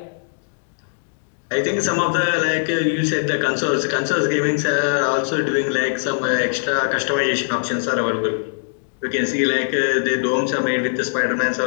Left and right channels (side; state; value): right; silent; digital silence